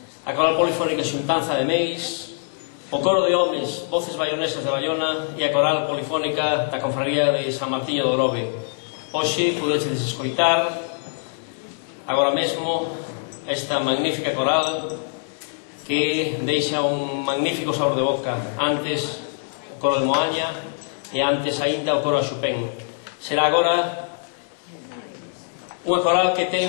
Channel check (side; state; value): right; silent; 63 dB below the other